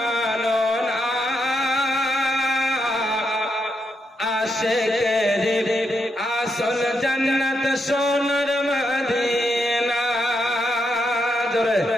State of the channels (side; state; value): both; normal; correlation 0.81